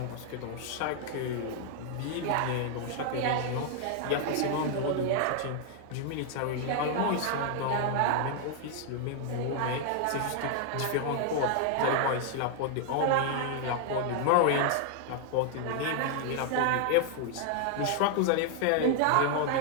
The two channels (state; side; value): different; both; correlation 0.00